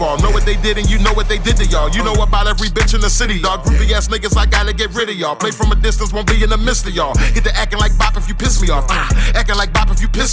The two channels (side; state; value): both; identical; correlation 1.00